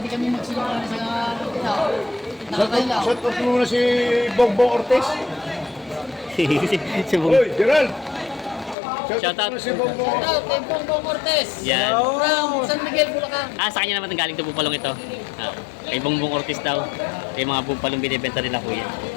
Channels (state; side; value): drops out; right; at 8.8 s